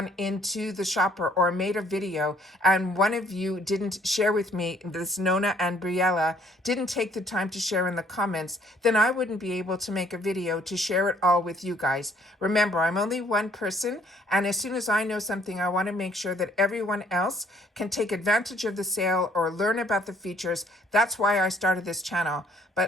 into the shopper or made a video and one of you didn't share with me, this Nona and Briella didn't take the time to share in the comments, then I wouldn't be able to make a video to share it all with you guys. Remember, I'm only one person, and as soon as I know something, I want to make sure that everyone else can take advantage of the sale or learn about the features. That's why I started this channel.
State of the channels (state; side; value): normal; both; correlation 0.63